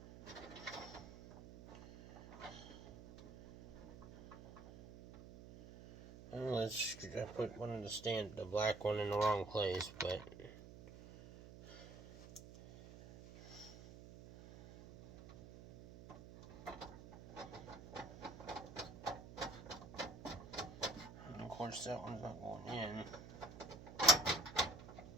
Well, I put one of the black one in the wrong place, but and of course that one's not going in.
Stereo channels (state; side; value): noise; right; hum, 14 dB below the sound